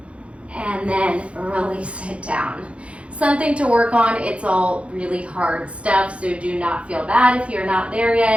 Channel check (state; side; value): late; left; 0.061 ms